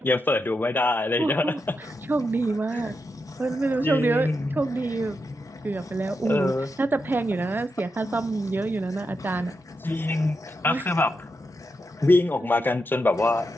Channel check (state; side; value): normal; both; correlation 0.86